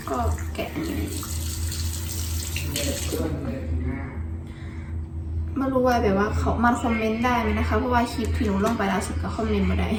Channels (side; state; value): both; identical; correlation 1.00